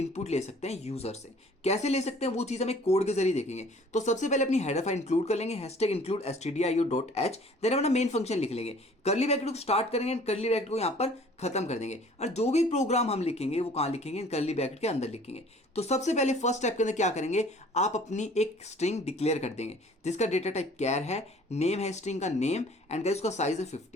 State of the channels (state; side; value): normal; both; correlation 0.52